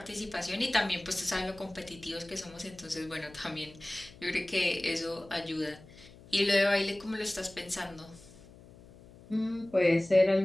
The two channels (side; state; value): left; noise; hum, 21 dB below the sound